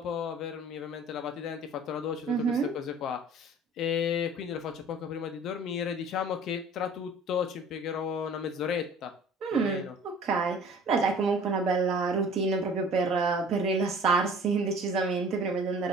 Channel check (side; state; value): both; normal; correlation 0.47